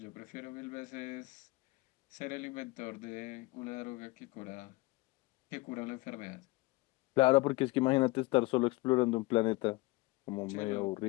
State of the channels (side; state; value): right; quieter; 22.9 dB